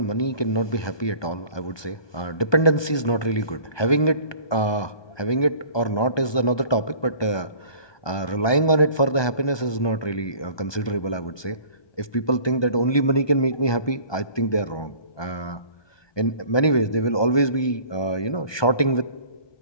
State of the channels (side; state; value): right; late; 1.2 ms